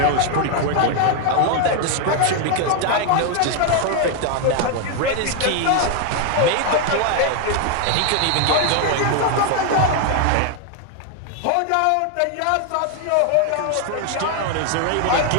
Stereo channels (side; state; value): both; different; correlation 0.01